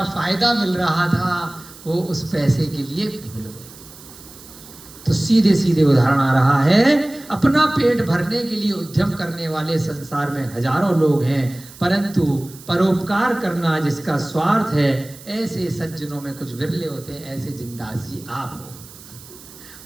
फायदा मिल रहा था, वो उस पैसे के लिए भूल गए। तो सीधे सीधे उदाहरण आ रहा है, अपना पेट भरने के लिए उद्यम करने वाले संसार में हजारों लोग हैं, परंतु परोपकार करना जिसका स्वार्थ है, ऐसे सज्जनों में कुछ विरले होते हैं। ऐसे जिंदास जी आप हो,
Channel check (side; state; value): right; noise; hiss, 19 dB below the sound